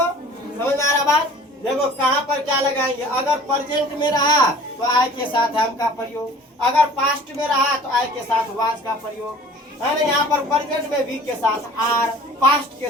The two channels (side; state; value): both; normal; correlation 0.47